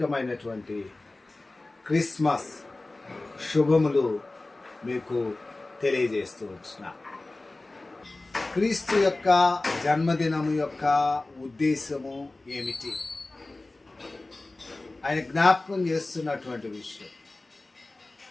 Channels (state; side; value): quieter; right; 3.0 dB